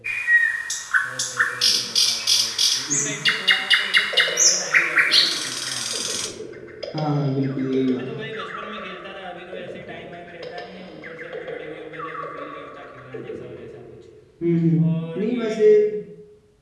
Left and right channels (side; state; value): both; identical; correlation 1.00